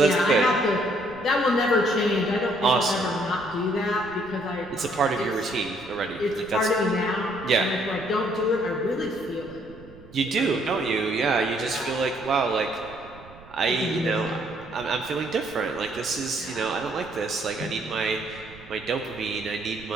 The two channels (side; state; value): right; noise; rumble, 21 dB below the sound